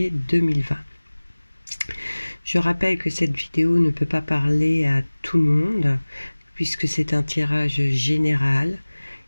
2020. Je rappelle que cette vidéo ne peut pas parler à tout le monde puisque c'est un tirage général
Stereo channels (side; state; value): both; inverted; correlation -1.00